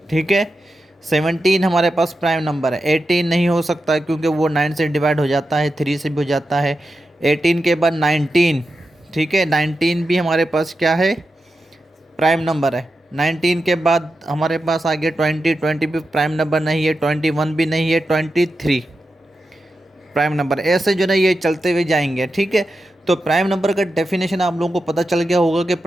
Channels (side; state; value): both; normal; correlation 0.89